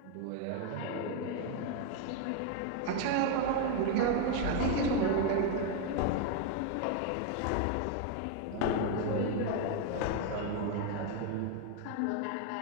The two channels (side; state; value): both; different; correlation 0.01